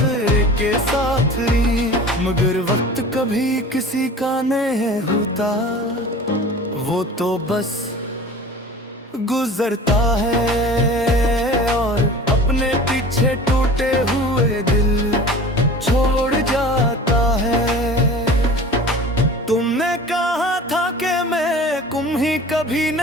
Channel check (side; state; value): both; normal; correlation 0.40